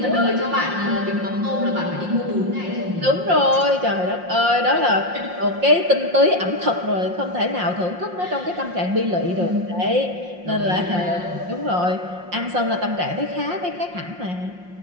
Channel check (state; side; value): late; left; 5.6 ms